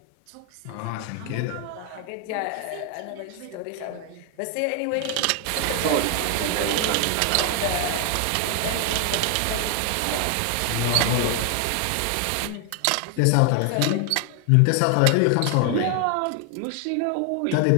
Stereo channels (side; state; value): both; different; correlation 0.00